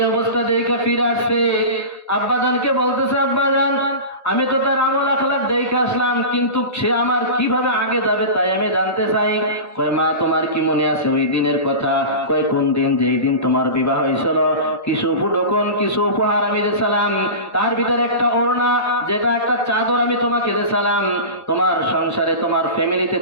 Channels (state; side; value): late; right; 1.3 ms